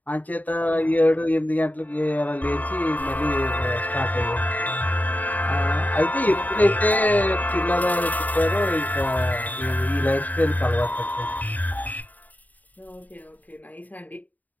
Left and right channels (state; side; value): late; right; 0.080 ms